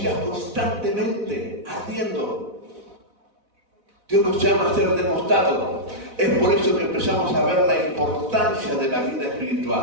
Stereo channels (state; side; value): late; left; 4.0 ms